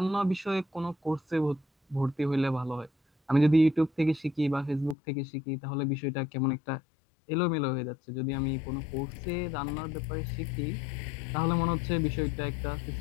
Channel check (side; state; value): right; drops out; at 5.0 s